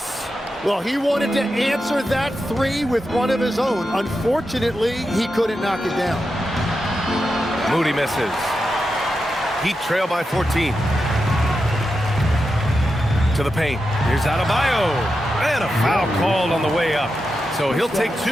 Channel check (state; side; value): normal; both; correlation 0.88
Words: Well, he wanted to answer that 3 with one of his own. Unfortunately, he couldn't knock it down. Moody misses. Heat trail by 14. To the paint. Here's Adebayo. And a foul called on the way up. So he'll take